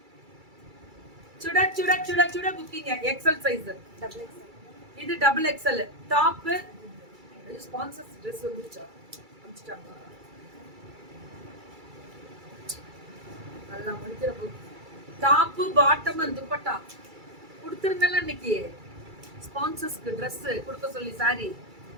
சுட சுட சுட சுட booking. XL size. Double XL. இது double XL. Top sponsors dress வந்துச்சா அனுப்பிச்சிட்டாங்க. நல்லா முடிக்கிற book. Top bottom and dupatta கொடுத்துருந்தல இன்னைக்கு. ஸ்பான்சர்ஸ்க்கு ட்ரெஸ் கொடுக்க சொல்லி சாரி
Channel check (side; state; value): left; late; 2.3 ms